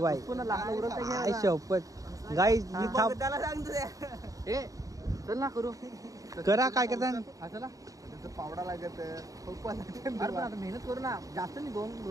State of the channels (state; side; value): late; left; 0.16 ms